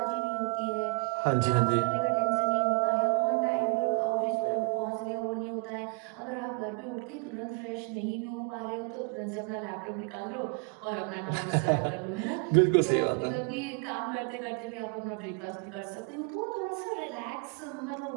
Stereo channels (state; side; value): quieter; left; 35.3 dB